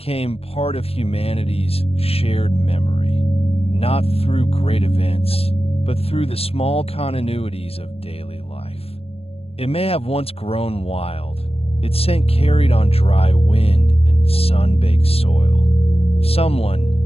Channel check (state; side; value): late; right; 0.29 ms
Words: part of humanity's shared memory, not through great events, but through the small continuities of daily life. It may have once grown wild, its scent carried on dry wind and sun-baked soil.